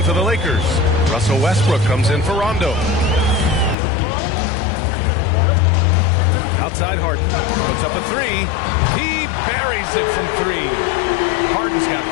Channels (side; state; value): right; drops out; at 3.8 s